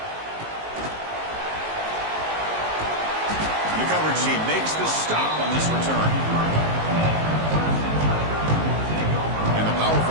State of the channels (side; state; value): left; late; 19 ms